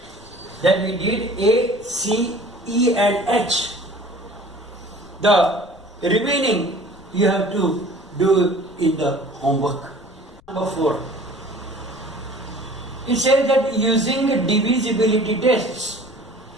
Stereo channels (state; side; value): noise; left; rumble, 27 dB below the sound